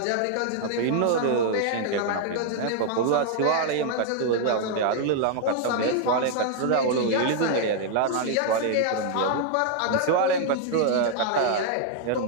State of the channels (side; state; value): both; different; correlation -0.01